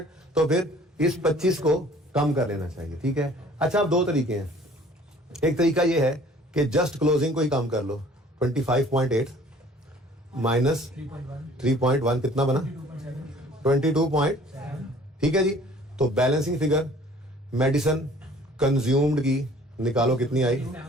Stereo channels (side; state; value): both; normal; correlation 0.52